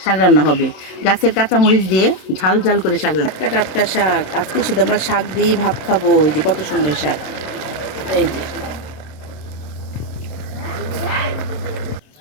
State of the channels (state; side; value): late; right; 27 ms